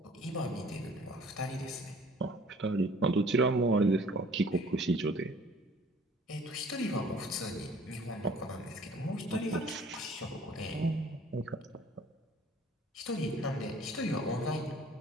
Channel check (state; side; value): normal; both; correlation 0.53